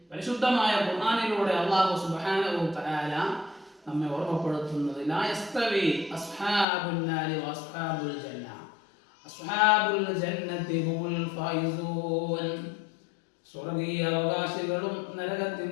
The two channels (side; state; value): right; drops out; at 6.7 s